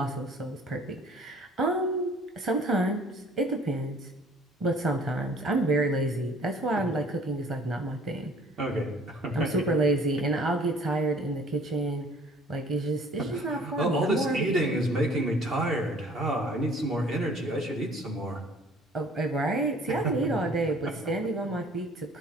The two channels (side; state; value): both; normal; correlation 0.53